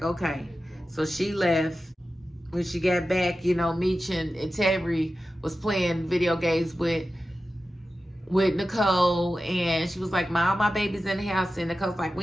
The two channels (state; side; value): normal; both; correlation 0.93